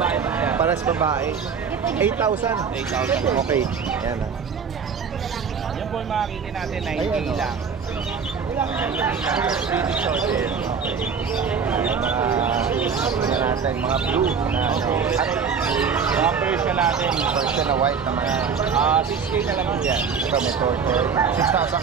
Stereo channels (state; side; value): quieter; left; 6.1 dB